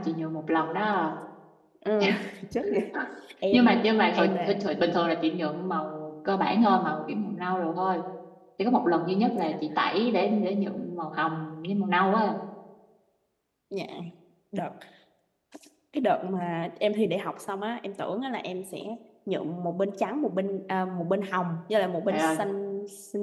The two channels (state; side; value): identical; both; correlation 1.00